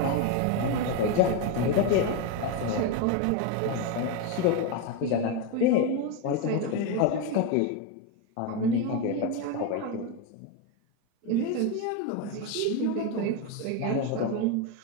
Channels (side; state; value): both; different; correlation 0.03